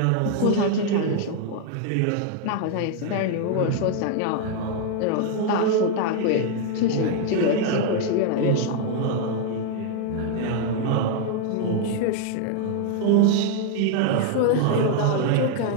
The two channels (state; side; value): different; both; correlation 0.00